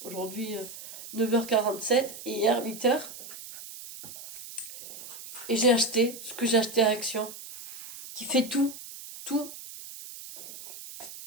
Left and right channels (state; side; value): noise; right; hiss, 13 dB below the sound